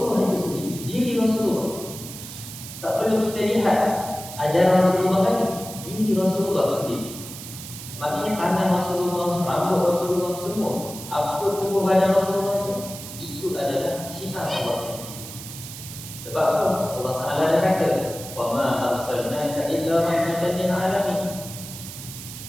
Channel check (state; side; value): noise; right; hiss, 12 dB below the sound